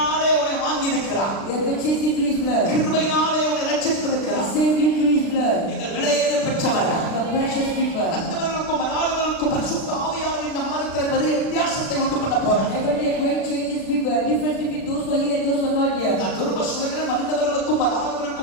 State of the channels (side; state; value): right; late; 36 ms